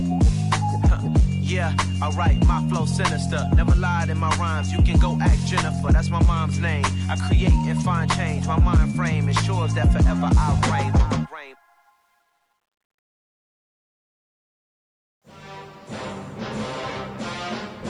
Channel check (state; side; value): identical; both; correlation 1.00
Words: Yeah, alright, my flow sinister. Never lied in my rhymes, you can go ask Jennifer, that's my mom's name. I create and find change, my mind frame ensures that forever I reign.